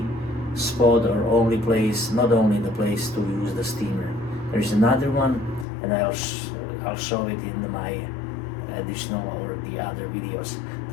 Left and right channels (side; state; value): right; drops out; at 5.7 s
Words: spot or only place, not only the place to use the steamer. There is another one, and I'll show it in my additional or the other videos.